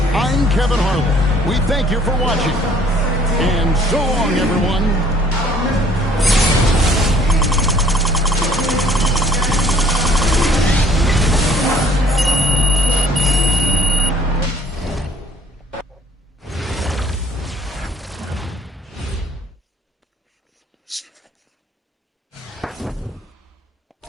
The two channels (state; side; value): normal; both; correlation 0.57